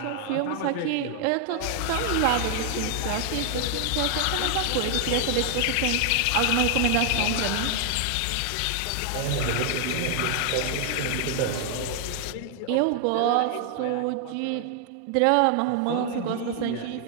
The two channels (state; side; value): different; both; correlation 0.00